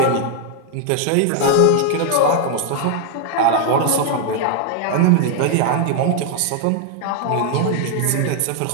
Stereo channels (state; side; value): different; both; correlation 0.00